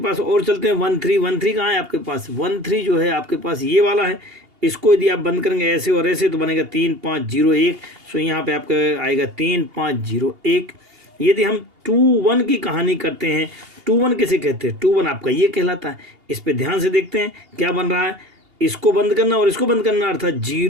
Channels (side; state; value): left; late; 2.8 ms